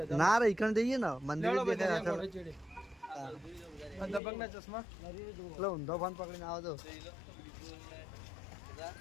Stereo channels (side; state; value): right; drops out; at 4.2 s